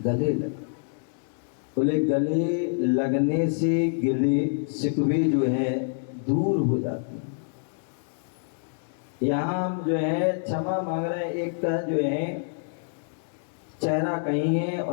लग। बोले गले लगने से गिले शिकवे जो है दूर हो जाते हैं। यहाँ हम जो है क्षमा मांग रहे हैं, एक का जो है चेहरा कहीं है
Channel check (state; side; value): silent; right; 60 dB below the other